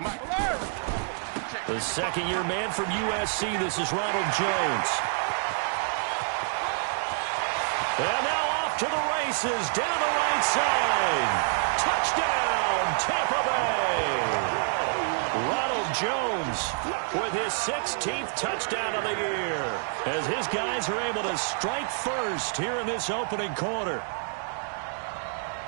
Mike. The second-year man from USC, this is Ronald Jones. And now off to the races, down the right side. Touchdown, Tampa Bay. Ronald Jones with his 16th touchdown of the year as his guys are able to strike first here in this opening quarter.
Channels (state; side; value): silent; left; 60 dB below the other